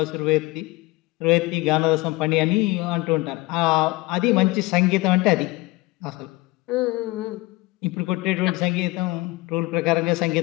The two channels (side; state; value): right; quieter; 21.2 dB